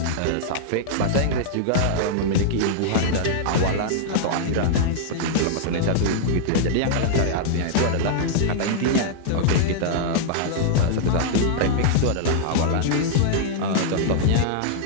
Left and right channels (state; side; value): different; both; correlation -0.02